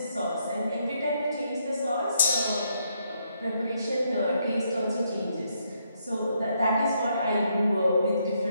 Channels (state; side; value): inverted; both; correlation -0.75